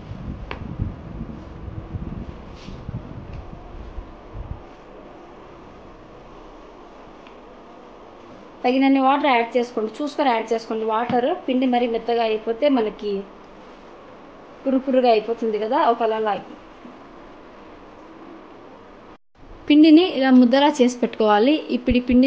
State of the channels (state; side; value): identical; both; correlation 1.00